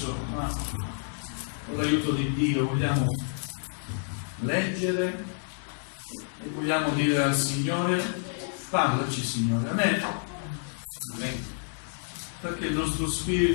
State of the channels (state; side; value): silent; right; digital silence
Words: ma con l'aiuto di Dio vogliamo leggere e vogliamo dire al Signore: parlaci Signore, amen. Perché il nostro